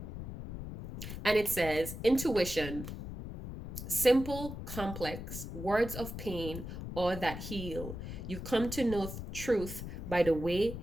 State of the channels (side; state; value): left; noise; rumble, 8 dB below the sound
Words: And it says intuition, simple, complex, words of pain or that heal. You come to know truth by the way